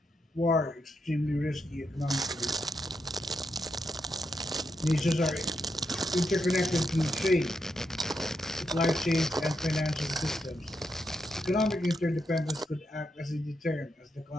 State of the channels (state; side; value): normal; both; correlation 0.83